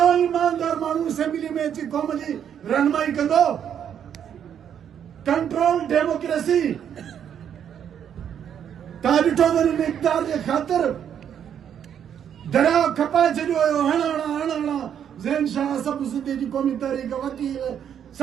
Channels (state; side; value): quieter; left; 8.9 dB